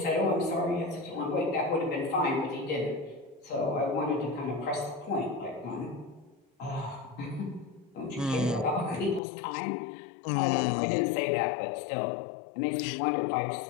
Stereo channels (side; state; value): right; drops out; at 9.2 s